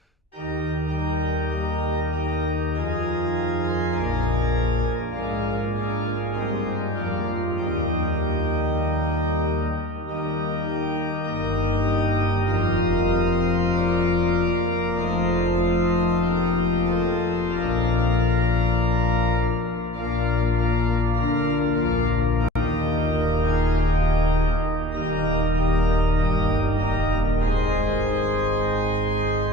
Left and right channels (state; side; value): normal; both; correlation 0.38